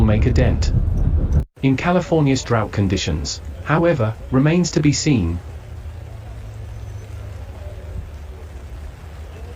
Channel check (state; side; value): identical; both; correlation 1.00